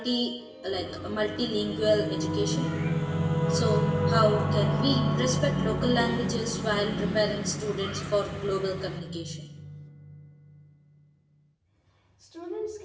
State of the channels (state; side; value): identical; both; correlation 1.00